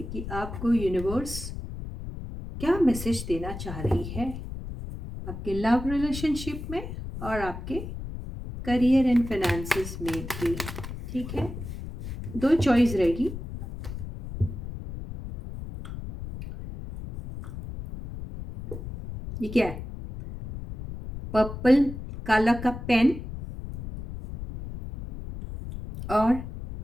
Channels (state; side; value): noise; left; rumble, 9 dB below the sound